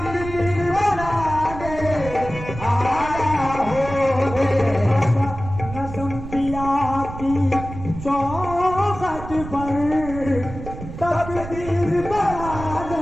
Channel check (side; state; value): right; noise; rumble, 11 dB below the sound